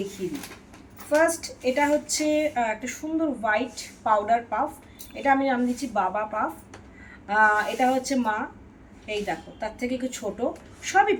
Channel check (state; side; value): identical; both; correlation 1.00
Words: দিই। ফার্স্ট এটা হচ্ছে একটা সুন্দর হোয়াইট পাউডার পাফ, এটা আমি নাম দিচ্ছি বাবা পাফ। এটা হচ্ছে মা, এই দেখো তার থেকে একটু ছোটো, সবই